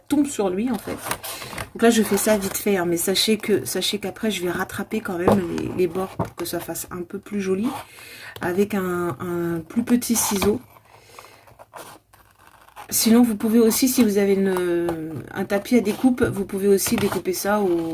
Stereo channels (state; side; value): identical; both; correlation 1.00